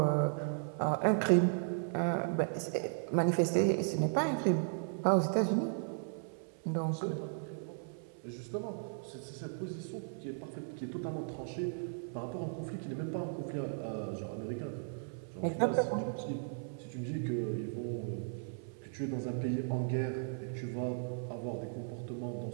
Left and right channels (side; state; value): left; silent; 54 dB below the other